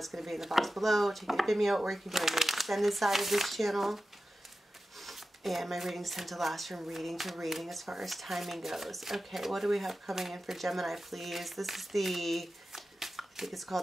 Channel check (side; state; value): both; normal; correlation 0.93